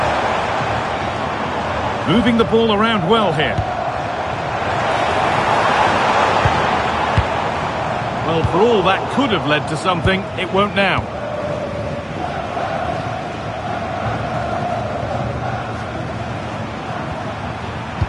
Moving the ball around well here. Well, for all that could have led to something, it won't now.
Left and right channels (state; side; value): identical; both; correlation 1.00